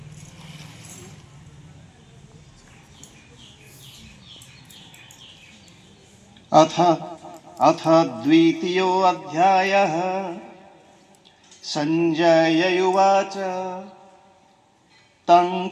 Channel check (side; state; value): both; identical; correlation 1.00